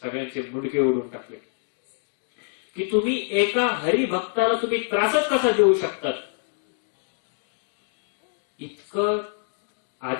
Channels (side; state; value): right; silent; 61 dB below the other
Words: सगळ्यांचे मुंडके ओढून टाकले. की तुम्ही एका हरिभक्ताला तुम्ही त्रासच कसा देऊ शकतात. इतकं